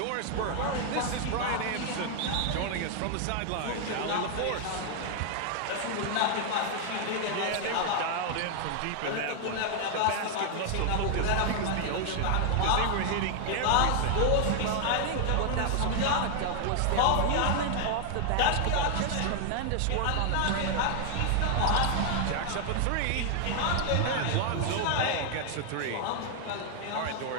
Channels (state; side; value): different; both; correlation 0.00